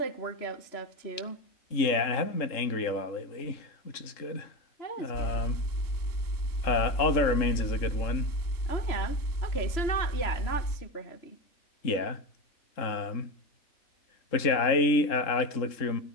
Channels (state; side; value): late; right; 3.7 ms